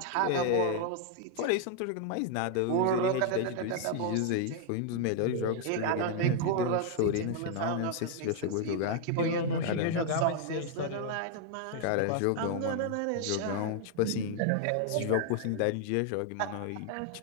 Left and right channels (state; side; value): different; both; correlation 0.00